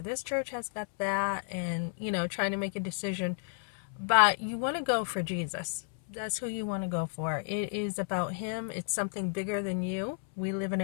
this church has got that, and trying to make a decision. But you want to go for Jesus. That's who you want to go for. It is about him. It's something bigger than you. We live in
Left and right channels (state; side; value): silent; right; 56 dB below the other